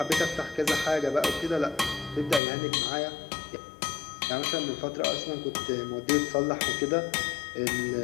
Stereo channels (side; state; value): right; drops out; at 2.4 s